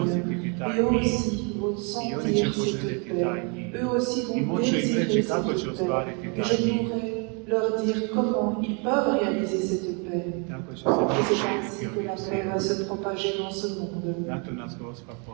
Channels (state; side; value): quieter; left; 35.2 dB